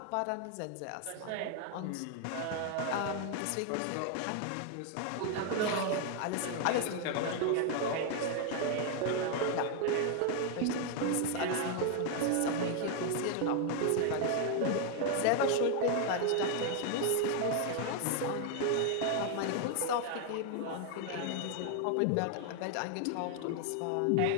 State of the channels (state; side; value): different; both; correlation 0.00